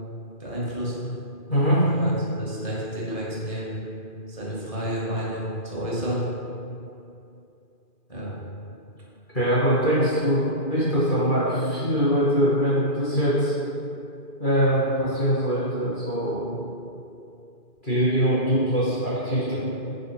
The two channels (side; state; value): right; late; 2.4 ms